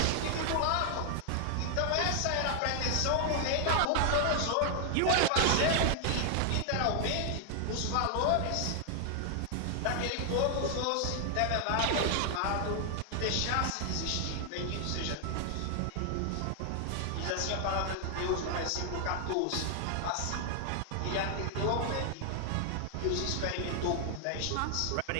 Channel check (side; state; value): both; different; correlation 0.00